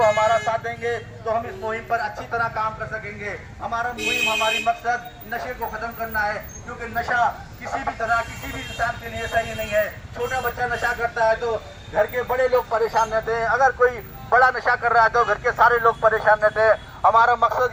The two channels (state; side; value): identical; both; correlation 1.00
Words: हमारा साथ देंगे तो हम इस मुहिम पर अच्छी तरह काम कर सकेंगे। हमारा मुहिम, हमारी मकसद नशे को ख़त्म करना है, क्योंकि नशा किसी भी तरह, किसी भी इंसान के लिए सही नहीं है। छोटा बच्चा नशा करता है तो घर के बड़े लोग परेशान रहते हैं, अगर कोई बड़ा नशा कर रहा है तो घर के सारे लोग परेशान रहते हैं। हमारा